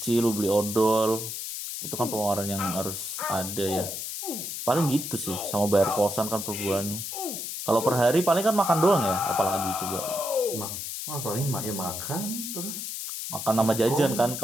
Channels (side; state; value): left; noise; hiss, 6 dB below the sound